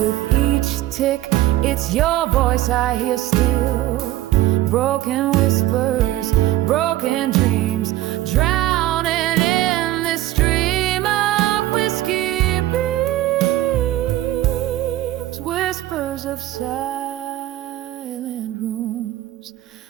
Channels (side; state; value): left; quieter; 15.1 dB